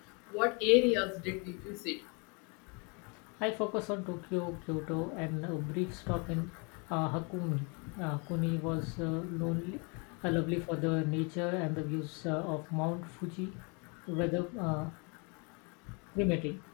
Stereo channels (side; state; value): right; quieter; 32.6 dB